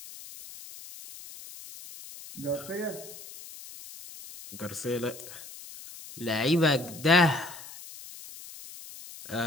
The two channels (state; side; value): noise; left; hiss, 15 dB below the sound